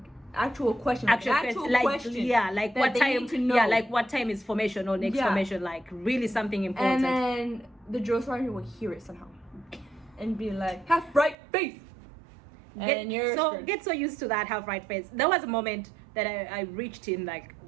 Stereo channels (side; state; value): left; drops out; at 11.4 s